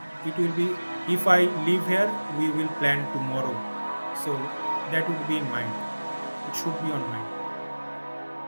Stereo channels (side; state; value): both; inverted; correlation -1.00